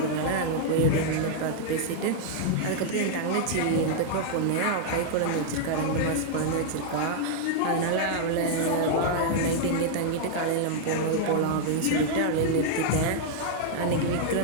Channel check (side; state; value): both; different; correlation -0.01